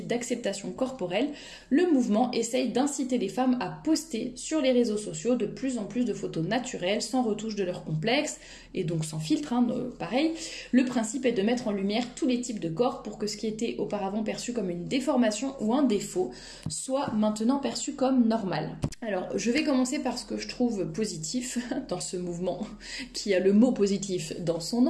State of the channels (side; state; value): both; identical; correlation 1.00